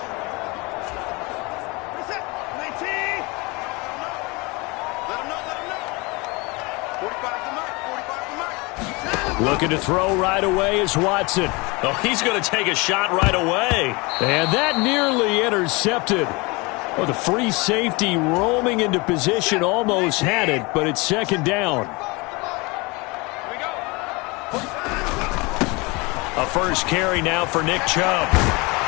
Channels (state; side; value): quieter; right; 26.2 dB